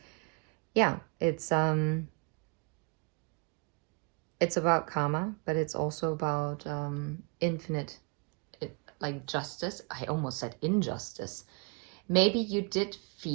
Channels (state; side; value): quieter; left; 34.7 dB